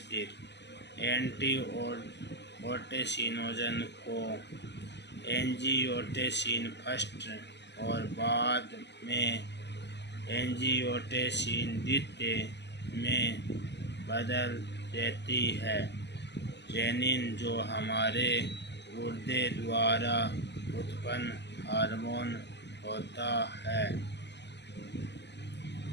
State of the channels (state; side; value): late; right; 0.50 ms